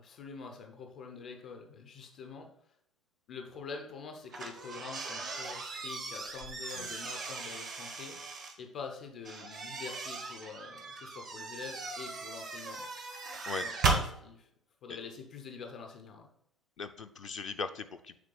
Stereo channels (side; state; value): both; normal; correlation 0.48